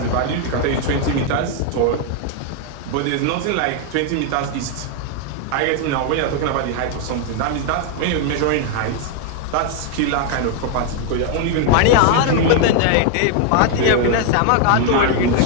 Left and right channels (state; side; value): different; both; correlation 0.00